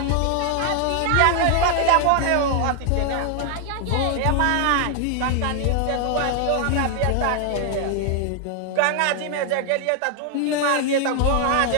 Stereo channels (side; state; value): both; different; correlation 0.00